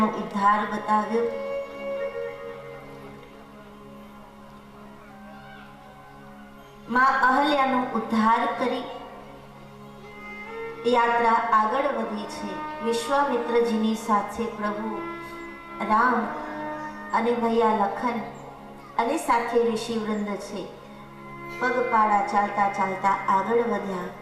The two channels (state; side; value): identical; both; correlation 1.00